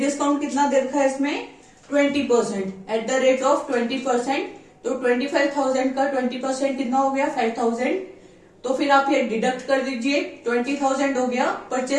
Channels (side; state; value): both; identical; correlation 1.00